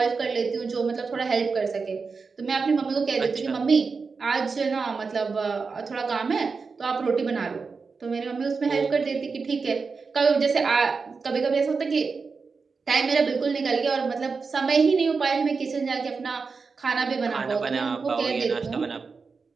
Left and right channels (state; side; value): quieter; left; 4.8 dB